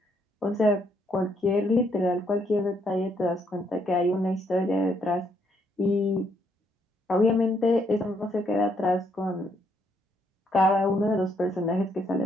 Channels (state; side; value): normal; both; correlation 0.72